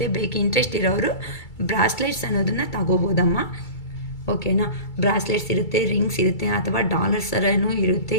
ಬೇಕು ಇಂಟ್ರೆಸ್ಟ್ ಇರೋರು ಬ್ರಾಸ್ಲೆಟ್ಸ್ ಅನ್ನೋದನ್ನು ತಗೋಬೋದಮ್ಮ, ಓಕೆನಾ. ಬ್ರಾಸ್ಲೆಟ್ಸ್ ಇರುತ್ತೆ, ರಿಂಗ್ಸ್ ಇರುತ್ತೆ, ಅಥವಾ ಡಾಲರ್ಸ್ ಥರನೂ ಇರುತ್ತೆ.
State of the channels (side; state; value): right; late; 2.3 ms